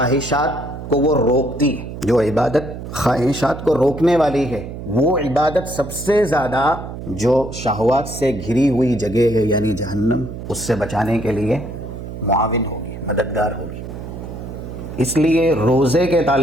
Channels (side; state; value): right; noise; hum, 10 dB below the sound